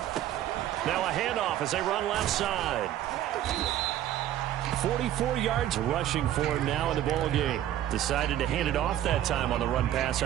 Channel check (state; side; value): quieter; left; 12.1 dB